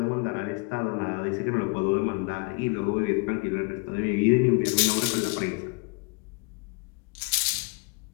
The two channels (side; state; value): right; quieter; 30.8 dB